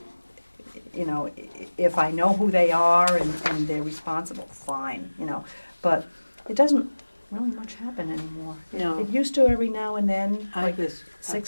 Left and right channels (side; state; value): both; inverted; correlation -1.00